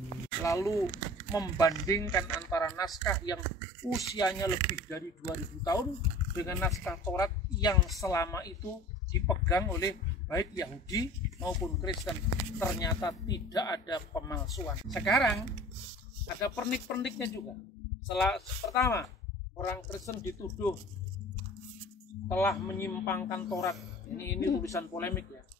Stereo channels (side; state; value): both; normal; correlation 0.43